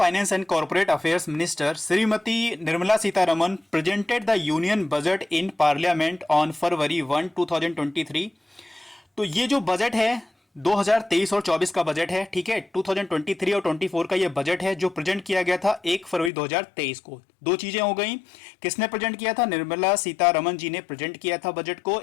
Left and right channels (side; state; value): right; drops out; at 16.3 s